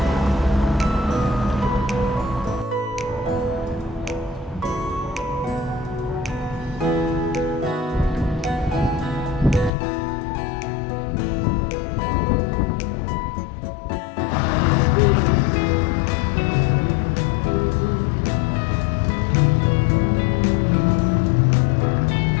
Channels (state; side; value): drops out; right; at 9.7 s